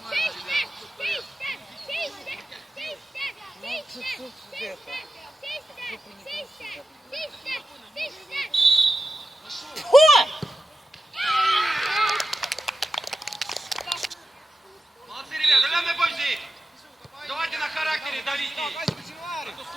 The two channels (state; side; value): normal; both; correlation 0.91